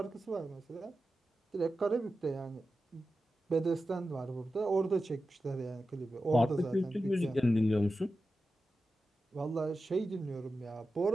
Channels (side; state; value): both; normal; correlation 0.92